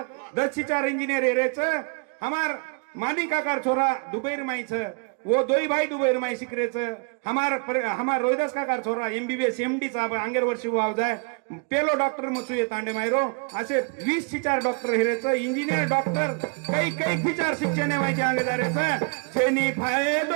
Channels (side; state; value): left; quieter; 39.2 dB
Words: 10 शिचार इंजीनियर हेरेच हमार मानी काकार छोरा दुबईर माईच वो दोई भाई दुबईर माई शिकरेच हमार रोहिदास काकार छोरा एमबीबीएस एमडी चा अंगेर वर्षी वाव जाय पेलो डॉक्टर मचू ये तांडे मायरो असे 20 शिचार डॉक्टर हेरेच इंजीनियर डॉक्टर कई कई शिचार शिक्षण माहिती अंगे जारेच छेनी